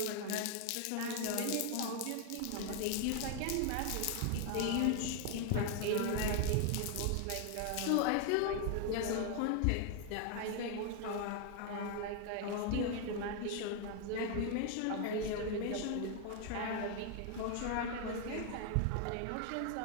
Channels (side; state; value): both; different; correlation 0.00